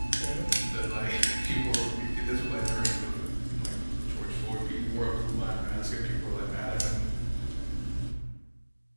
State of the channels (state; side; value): inverted; both; correlation -1.00